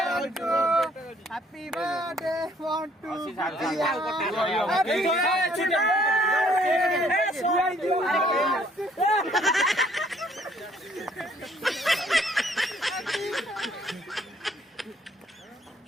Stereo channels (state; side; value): normal; both; correlation 0.63